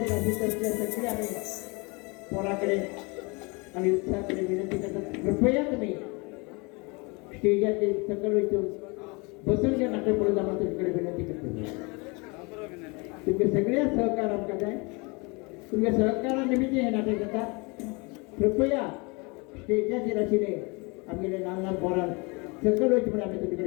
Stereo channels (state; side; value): quieter; right; 28.6 dB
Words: सगळे आम्ही पोराकडे आणि उत्साहाकडे विनंती करतात कृपया तुम्ही स्टेजाचे सकल इथून बसून घ्या नाटक पुढे जाणं तुमच्याकडे विनंती करतो तुमचे सगळे सहकार आमकां जाय तुमच्या सहकारानिमित्त हे नाटक जाता कृपया स्टेजाचेर आशिल्ले आमगेले ल्हान ल्हान पोरांक सकल वयचे म्हणून आमी तुमचे